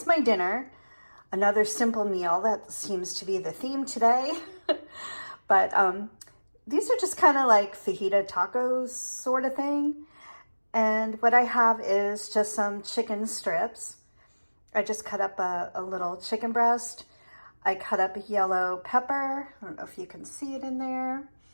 my dinner. Another simple meal. That seems to be the theme today. But these are just kind of like fajita tacos sort of thing. And what I have is just some chicken strips. I just cut up a little chicken breast. I cut up a yellow pepper. I don't know if you can see it in there.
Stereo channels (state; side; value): inverted; both; correlation -1.00